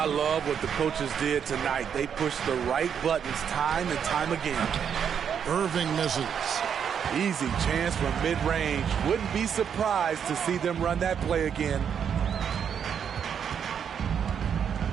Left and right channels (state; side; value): quieter; left; 7.8 dB